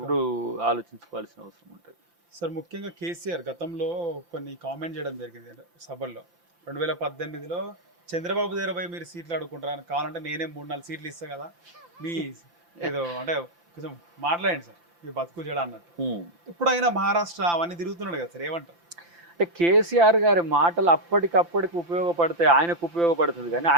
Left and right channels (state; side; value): late; left; 5.8 ms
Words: ఆలోచించుకోవాల్సిన అవసరం ఉంటుంది. సార్ ముఖ్యంగా కేసీఆర్ గతంలో కొన్ని కామెంట్ చేయడం జరిగింది సభల్లో. 2018లో చంద్రబాబు దగ్గర పోయి మీరు సీట్లు అడుగుకుంటారు, కావాలంటే నేనే 3-4 సీట్లు ఇస్తా కదా, మీ ఏదో అంటే కొంచెం మాట్లాడండి సార్ మీ బతుకు చేయడం అన్నట్టు. ఇప్పుడు అయినా మహారాష్ట్ర అవన్నీ తిరుగుతున్నాడు కదా సార్, ఏమంటారు? అంటే కేసీఆర్ గారి మాటలు అప్పటికప్పటికి ఉపయోగపడతాయి, ఆయనకు ఉపయోగపడుతుంది. కానీ